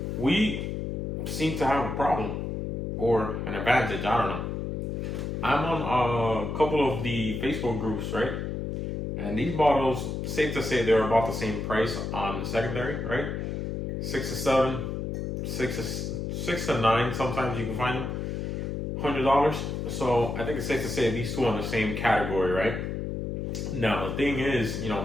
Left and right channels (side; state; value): left; noise; hum, 3 dB below the sound